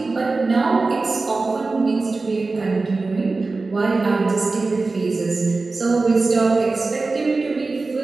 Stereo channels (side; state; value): left; quieter; 3.7 dB